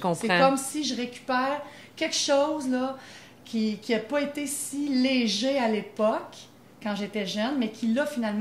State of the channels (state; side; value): identical; both; correlation 1.00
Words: C'est comme si je récupère quelque chose, là, qui n'a pas été si léger à l'époque, quand j'étais jeune, mais qui, là,